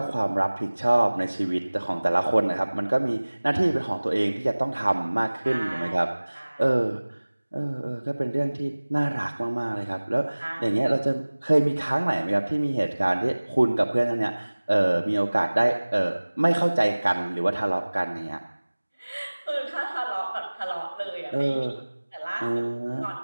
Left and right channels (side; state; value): both; inverted; correlation -1.00